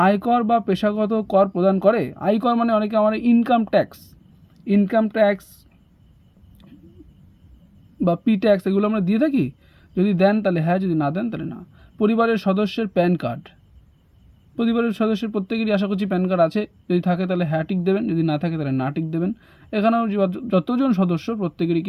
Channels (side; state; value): both; identical; correlation 1.00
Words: আয়কর বা পেশাগত কর প্রদান করে? আয়কর মানে অনেকে আমার ইনকাম ট্যাক্স বা পি ট্যাক্স এগুলো আমরা দিয়ে থাকি। যদি দেন তাহলে হ্যাঁ, যদি না দেন তাহলে না। পরিবারের সদস্যের প্যান কার্ড, পরিবারের সদস্যের প্রত্যেকেরই আশা করছি প্যান কার্ড আছে। যদি থাকে তাহলে হ্যাঁ টিক দেবেন, যদি না থাকে তাহলে না টিক দেবেন। এখানেও যতজন সদস্য প্রত্যেকেরই